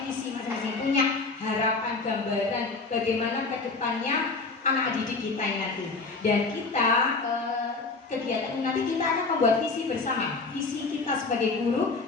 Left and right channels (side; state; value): right; quieter; 3.9 dB